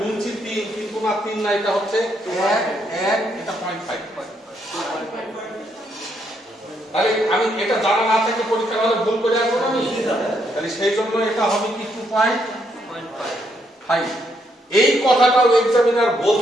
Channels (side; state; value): both; normal; correlation 0.75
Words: 3, কিন্তু না 3 না, এটা হচ্ছে 1 1, এটা 0.5। তাহলে আমি এটা জানা না থেকে পরীক্ষা হলে ভুল করে আসবো না আমি, তাহলে সেই জন্য এটা হবে কি 2.5। এই কথাটাও এক্সামিনার